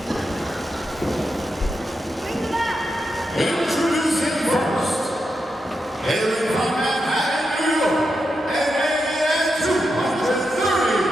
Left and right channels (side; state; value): both; normal; correlation 0.86